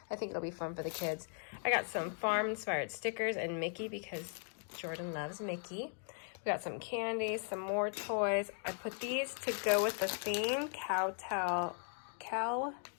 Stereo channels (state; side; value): silent; right; 52 dB below the other